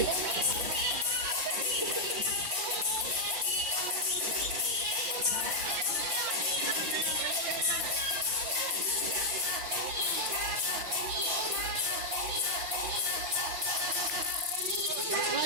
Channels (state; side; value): late; left; 5.8 ms